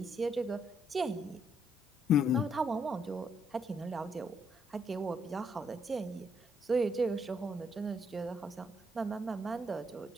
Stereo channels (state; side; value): normal; both; correlation 0.73